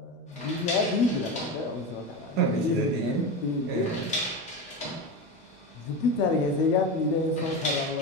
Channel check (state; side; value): normal; both; correlation 0.22